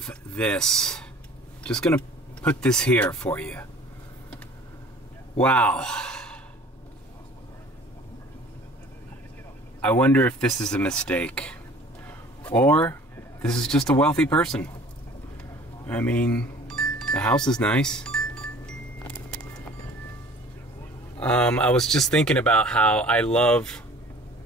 this. Just gonna put this here for you. Wow. I wonder if this is a mistake. Or this is just a wealthy person. I mean, the house is nice. I was just thinking about how I love,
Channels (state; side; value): normal; both; correlation 0.48